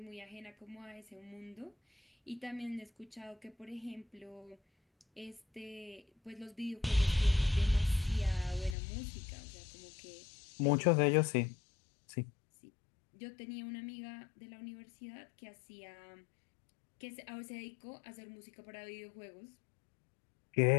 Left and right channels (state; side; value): drops out; right; at 8.8 s